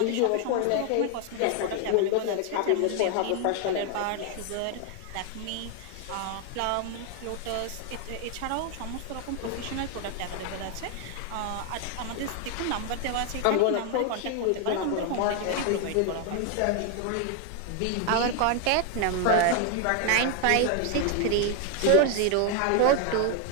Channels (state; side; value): different; both; correlation 0.01